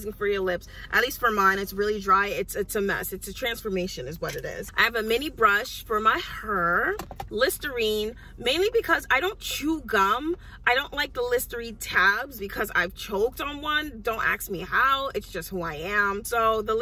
for your lips. At least for mine, it's really dry. It's a mess. It's a transformation is what it is. I have a mini brush for my hair. Listerine, mainly because I don't chew gum. I don't like the Listerine tabs because I've choked on one. Don't ask me how. It's just who I am. So the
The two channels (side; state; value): both; identical; correlation 1.00